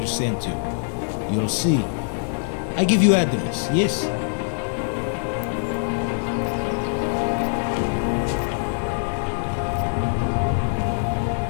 sent you. You'll see. I give you address, yes?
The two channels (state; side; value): silent; right; digital silence